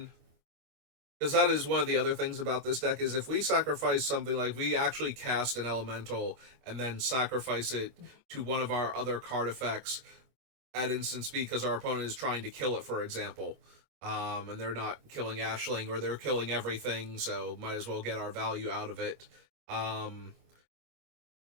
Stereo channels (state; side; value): late; left; 25 ms